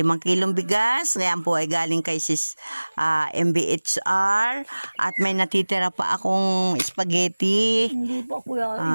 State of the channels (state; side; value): inverted; both; correlation -1.00